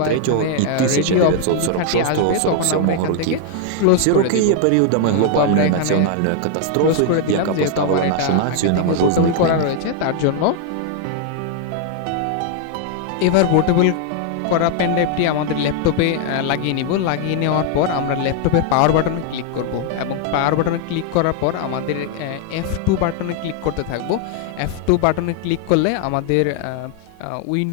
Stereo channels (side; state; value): both; different; correlation 0.00